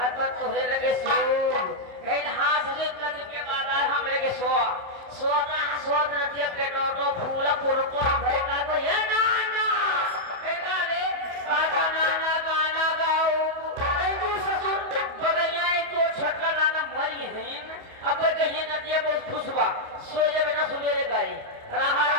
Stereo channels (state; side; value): late; left; 28 ms